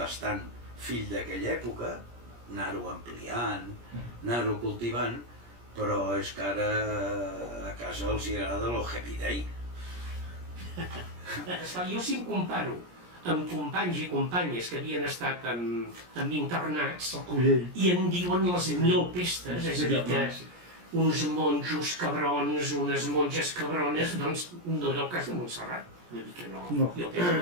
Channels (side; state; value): left; late; 17 ms